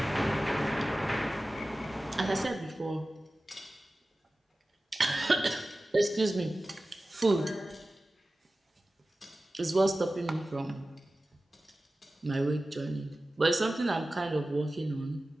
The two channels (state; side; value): normal; both; correlation 0.96